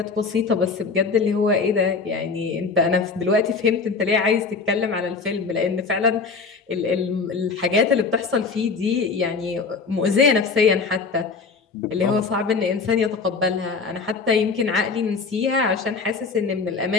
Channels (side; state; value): right; quieter; 4.7 dB